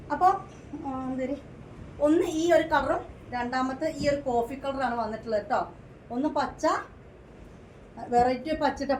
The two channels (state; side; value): identical; both; correlation 1.00